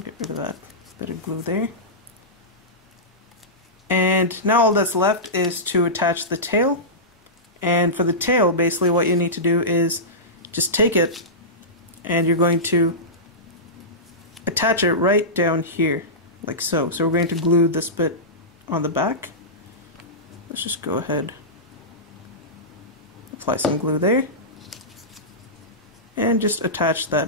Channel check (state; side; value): normal; both; correlation -0.16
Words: to get rid of that bit of glue there. And now all that's left is to attach the tail. And for the tail, basically what you need to do is just take it and you're going to attach it right down here, like so. So we're going to glue this bit on the back. Let's just go ahead, apply some glue there, and just attach